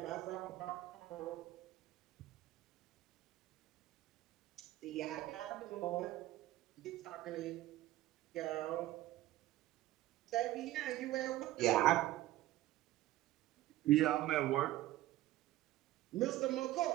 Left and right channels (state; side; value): quieter; left; 15.5 dB